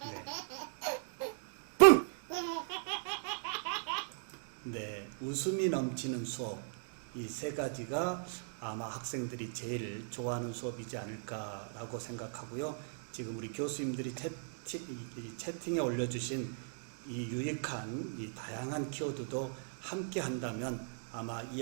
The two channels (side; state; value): left; silent; digital silence